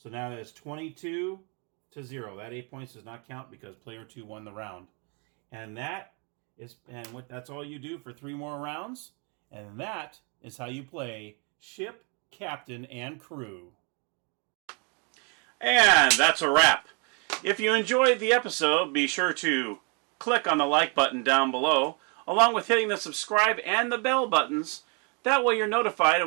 now that is 22 to 0. That 8 points does not count because player 2 won the round. And that's all you do for 3 more rounds. And that is how you play ship, captain, and crew. And that's a wrap. If you enjoyed the episode, be sure to click on the like button down below, along with hitting the subscribe and the bell buttons. That way you're notified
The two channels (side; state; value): left; quieter; 35.2 dB